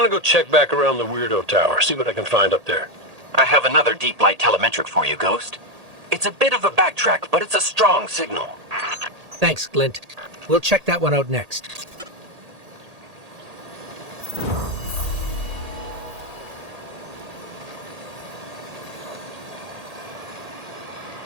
go check back around the Weirdo Tower, see what I can find up there. I have another deep light telemetric for you, Ghost. It's a bit of a backtrack, but it's a strong signal. Thanks, Glint. We'll check that one out next.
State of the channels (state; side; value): late; left; 1.8 ms